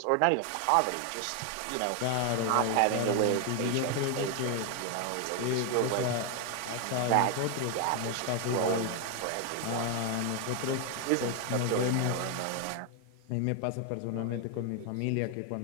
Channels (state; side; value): different; both; correlation 0.01